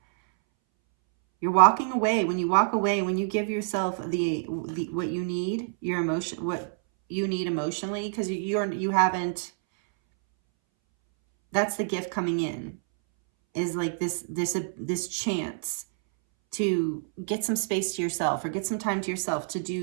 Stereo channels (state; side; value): silent; left; 60 dB below the other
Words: you're walking away, when you walk away, when you give yourself the what you need, your emotion, what you need emotionally, because you haven't, that's the gift coming in, is like this chance to get some space to yourself, or get some time to yourself to